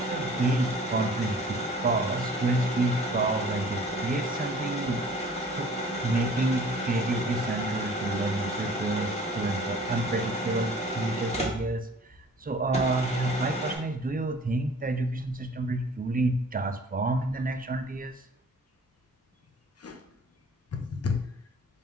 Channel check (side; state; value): both; normal; correlation 0.50